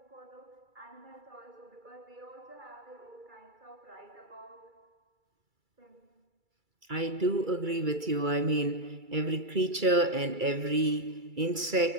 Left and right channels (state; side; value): late; left; 2.3 ms